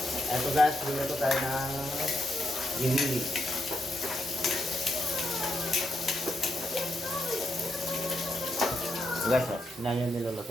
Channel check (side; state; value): both; normal; correlation 0.81